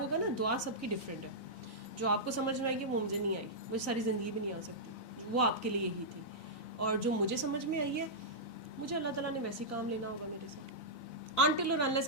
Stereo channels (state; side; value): late; right; 4.0 ms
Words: کہا نا دعا سب کی ڈفرینٹ ہے, جو آپ کو سمجھ میں آئی ہے وہ مجھے نہیں آئی, مجھے ساری زندگی بھی نہیں آ سکتی, وہ آپ کے لیے ہی تھی. اور جو مجھے سمجھ میں آئی ہے, مجھے اللہ تعالیٰ نے ویسے کام لینا ہوگا میرے سے, انٹل اور انلیس